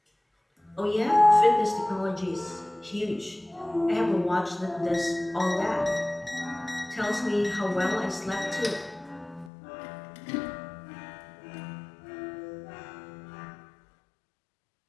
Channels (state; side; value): drops out; right; at 9.5 s